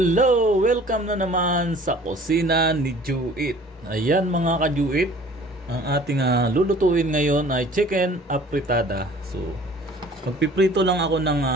Welcome na naman sa kusina ni Juit. Ayan mga ka-Juit, ang ating lulutuin ngayon ay chicken apritada. So, magpiprito lang ako ng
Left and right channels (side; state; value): both; normal; correlation 0.50